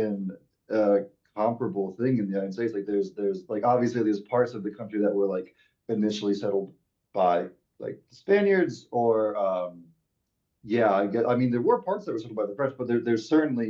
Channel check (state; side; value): identical; both; correlation 1.00